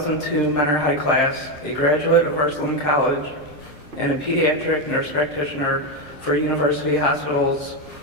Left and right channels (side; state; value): right; late; 7.5 ms